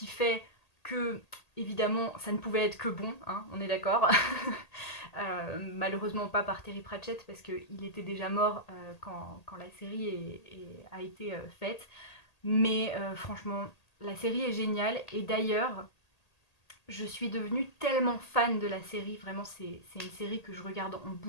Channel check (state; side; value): late; right; 1.8 ms